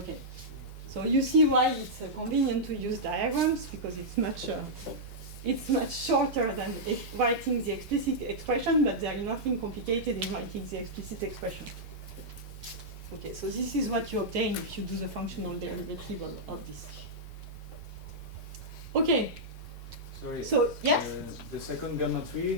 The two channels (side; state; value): both; normal; correlation -0.09